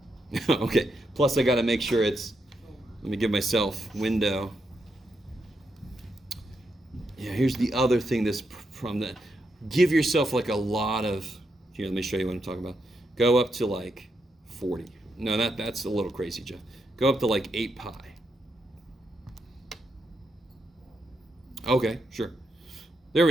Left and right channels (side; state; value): both; normal; correlation 0.82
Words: Okay. Plus I got to make sure it's, let me give myself window. Yeah, here's the other thing that's from the, give yourself like a lot of, here, let me show you what I'm talking about. Go up to like 40. No, that's a little crazy, Jeff. Go up to like 8 pi. Okay, sure. There